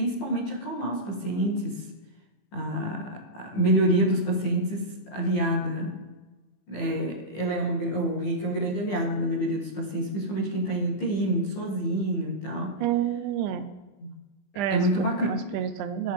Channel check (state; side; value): late; right; 15 ms